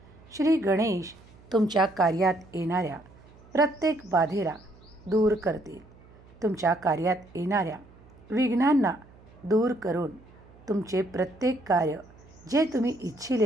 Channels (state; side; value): noise; right; hum, 24 dB below the sound